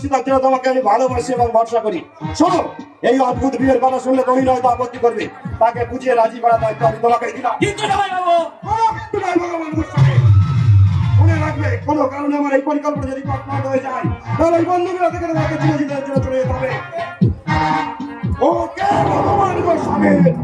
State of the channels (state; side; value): identical; both; correlation 1.00